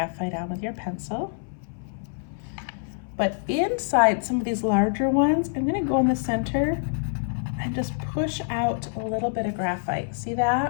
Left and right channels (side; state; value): right; silent; 59 dB below the other